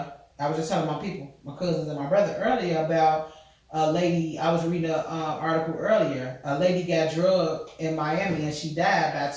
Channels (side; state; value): both; identical; correlation 1.00